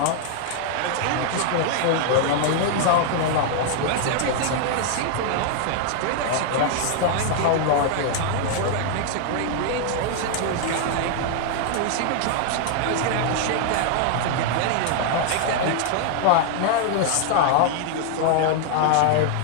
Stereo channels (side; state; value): both; different; correlation 0.00